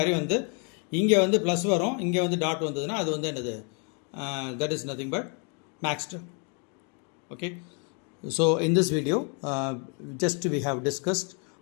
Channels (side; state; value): right; quieter; 38.0 dB